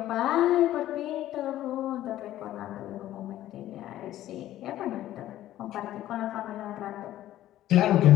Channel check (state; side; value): quieter; right; 13.6 dB